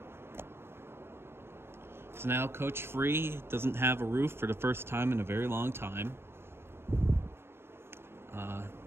So now Coach Free doesn't have a roof for the first time in a very long time.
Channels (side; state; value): left; late; 0.12 ms